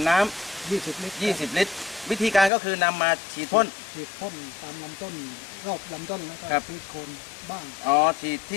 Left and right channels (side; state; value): right; drops out; at 2.5 s